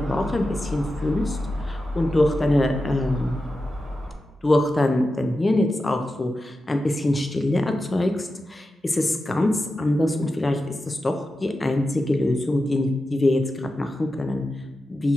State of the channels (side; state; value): both; normal; correlation 0.91